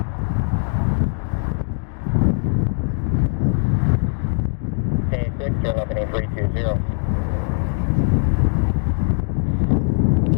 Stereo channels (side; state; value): right; silent; 56 dB below the other